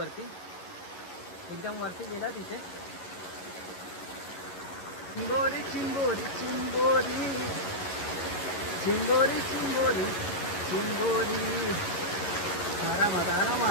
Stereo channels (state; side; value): late; right; 11 ms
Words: एकदम वरती गेला तिथे. चिंबोरी चिंबोरी चिंबोरी चिंबोरी चिंबोरी चिंबोरी. आरामात